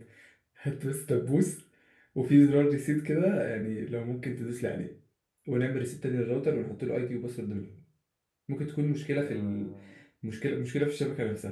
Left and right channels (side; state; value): both; identical; correlation 1.00